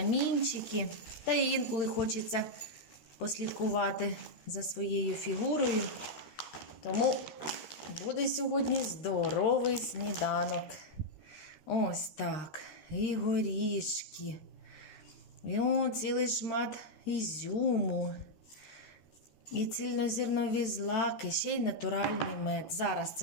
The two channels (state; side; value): late; right; 13 ms